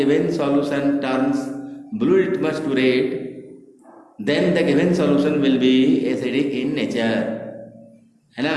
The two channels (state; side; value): identical; both; correlation 1.00